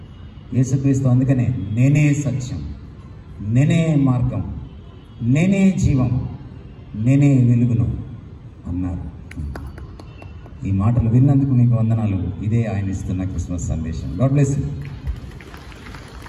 యేసుక్రీస్తు అందుకనే నేనే సత్యం, నేనే మార్గం, నేనే జీవం, నేనే వెలుగును అన్నారు. ఈ మాటలు విన్నందుకు మీకు వందనాలు. ఇదే ఆయన ఇస్తున్న క్రిస్మస్ సందేశం. God bless you.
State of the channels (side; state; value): both; identical; correlation 1.00